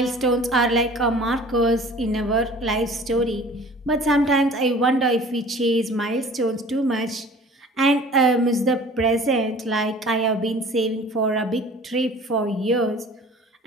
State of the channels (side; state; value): both; normal; correlation 0.46